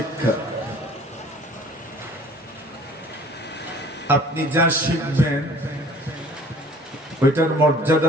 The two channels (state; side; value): normal; both; correlation 0.50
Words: আপনি যা শিখবেন ওইটার মর্যাদা